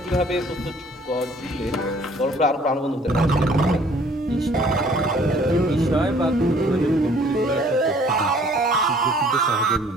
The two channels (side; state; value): both; normal; correlation 0.57